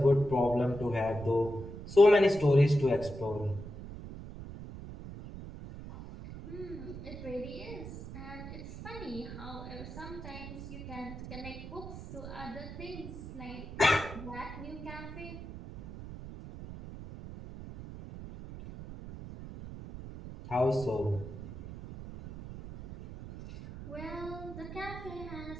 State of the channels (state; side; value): noise; right; rumble, 11 dB below the sound